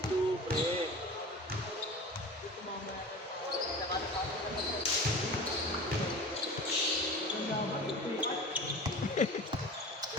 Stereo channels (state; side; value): normal; both; correlation 0.36